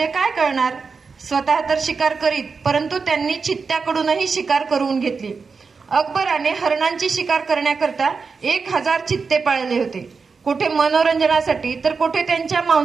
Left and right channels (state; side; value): quieter; left; 5.0 dB